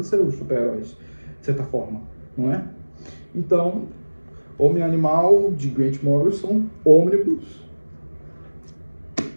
os super-heróis, de certa forma, não é? Então, Homem e Animal, de Grant Morrison, Ônibus,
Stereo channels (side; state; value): both; inverted; correlation -1.00